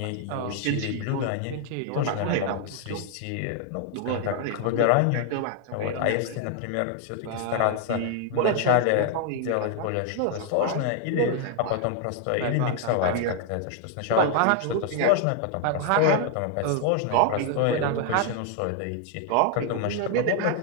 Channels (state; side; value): different; both; correlation 0.00